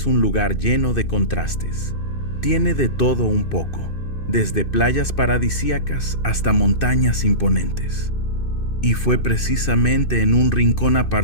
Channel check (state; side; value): late; right; 2.6 ms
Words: un lugar lleno de contrastes. Tiene de todo un poco, desde playas paradisíacas hasta montañas imponentes. Y fue precisamente en un rincón